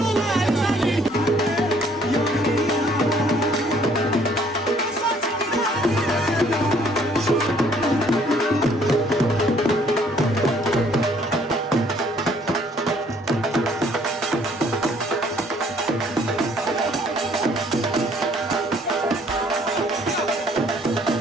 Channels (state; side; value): normal; both; correlation 0.61